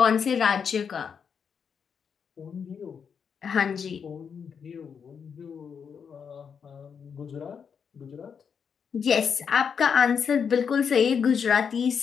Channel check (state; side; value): quieter; right; 6.7 dB